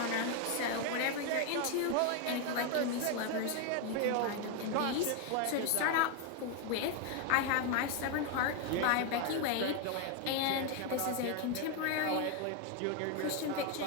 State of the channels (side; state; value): both; different; correlation 0.01